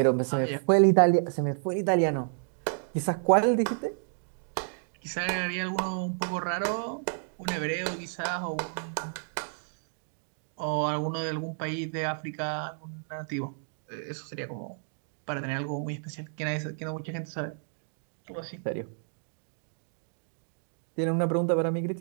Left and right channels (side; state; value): left; silent; digital silence